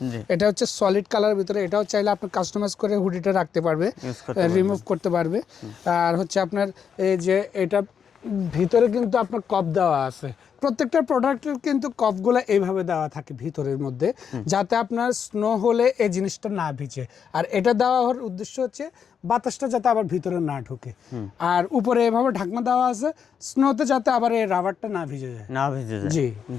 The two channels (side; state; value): right; quieter; 7.3 dB